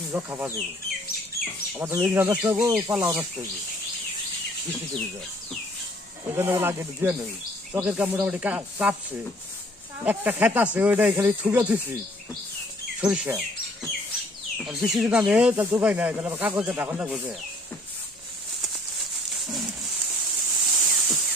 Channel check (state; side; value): normal; both; correlation 0.58